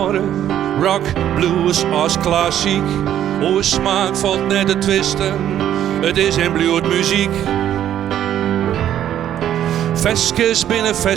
rock, blues als klassiek. O smaak valt net te twisten, het is en bloed muziek. Veskes binnen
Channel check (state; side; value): quieter; left; 11.0 dB